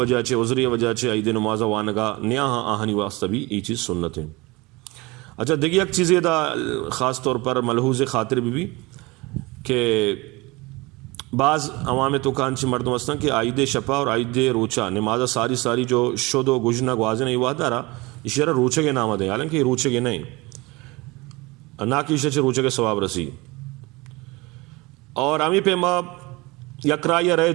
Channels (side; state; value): left; quieter; 23.5 dB